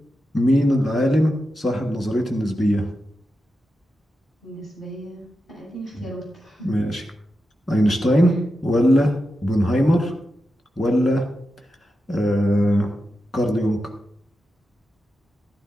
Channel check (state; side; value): normal; both; correlation 0.89